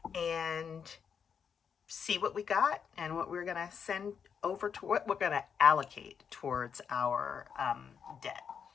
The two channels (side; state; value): right; quieter; 7.0 dB